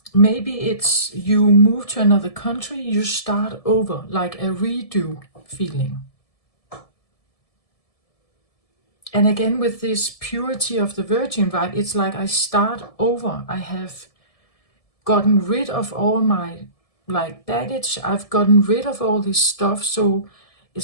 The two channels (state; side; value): late; right; 1.7 ms